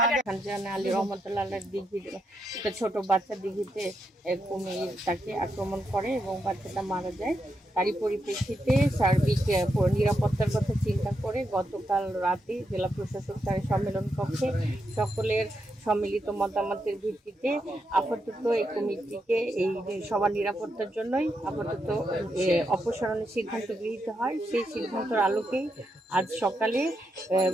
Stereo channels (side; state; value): both; normal; correlation 0.83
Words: ছোট বাচ্চা দিঘিতে কুমির তাকে আক্রমণ করে এবং বাচ্চাটা মারা যায়। তারই পরিপ্রেক্ষিতে সার্বিক নিরাপত্তার কথা চিন্তা করে গতকাল রাতে জেলা প্রশাসক তার সম্মেলন কক্ষে সকলের সম্মিলিত মতামতের ভিত্তিতে আপাতত এই কমিটিকে এই সবার নিরাপত্তার জন্যই আপাতত অপসারণের সিদ্ধান্ত গৃহীত হয়। সেই সিদ্ধান্তের আলোকেই আজ সকালে